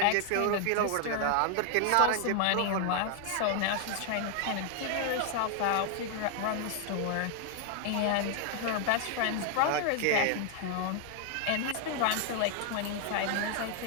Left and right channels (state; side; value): different; both; correlation 0.00